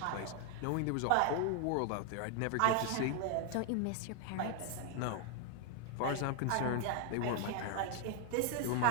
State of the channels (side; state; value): both; different; correlation 0.00